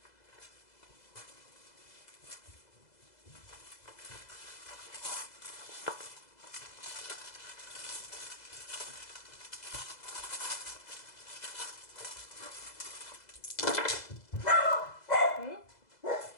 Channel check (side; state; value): right; late; 2.0 ms